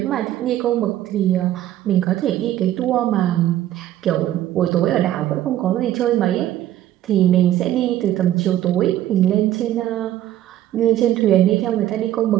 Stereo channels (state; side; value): quieter; left; 12.9 dB